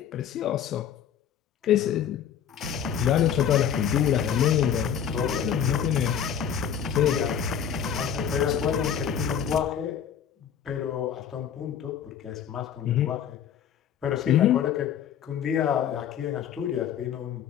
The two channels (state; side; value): quieter; right; 8.6 dB